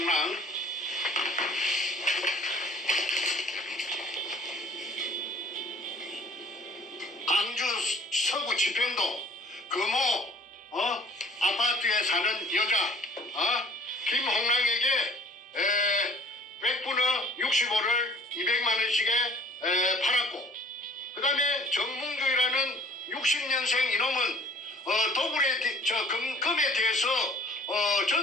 광주 서구 지평동 금호 아파트에 사는 여자 김홍랑에게 100분의 65를 200만 원씩에 팔았고 그 다음에 정문규라는 60년생 이놈은 도굴의 금에 대해서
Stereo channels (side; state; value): both; normal; correlation 0.53